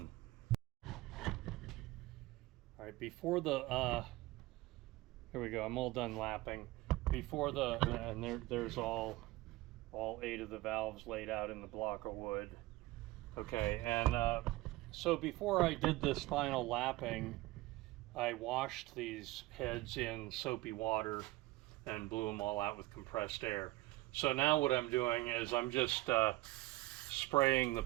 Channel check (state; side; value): quieter; left; 19.0 dB